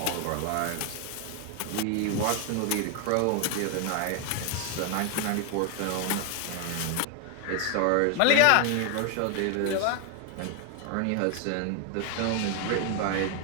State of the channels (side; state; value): both; different; correlation 0.00